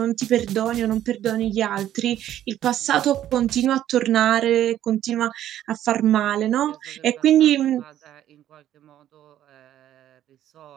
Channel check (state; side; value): quieter; left; 11.8 dB